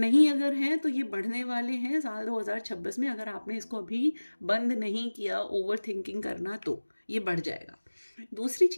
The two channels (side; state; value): both; inverted; correlation -1.00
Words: अगर हैं तो ये बढ़ने वाले हैं साल 2026 में। अगर आपने इसको अभी बंद नहीं किया ओवर थिंकिंग करना तो ये बढ़ जाएगा। दूसरी